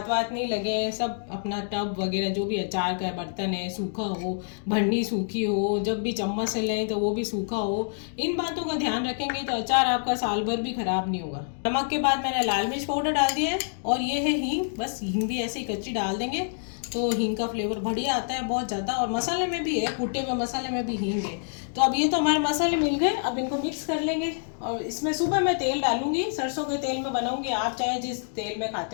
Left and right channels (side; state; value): right; silent; digital silence